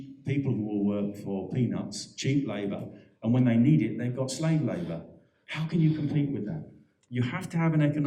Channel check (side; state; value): both; identical; correlation 1.00